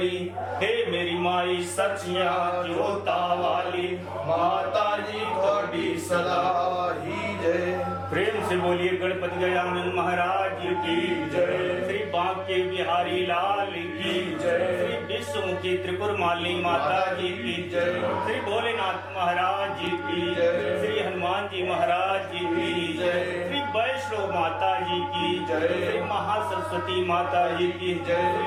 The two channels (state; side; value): identical; both; correlation 1.00